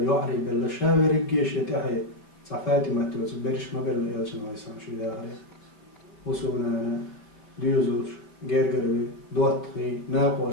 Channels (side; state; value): right; late; 5.4 ms